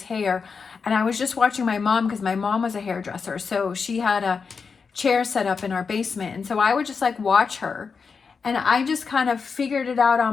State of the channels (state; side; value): quieter; right; 5.4 dB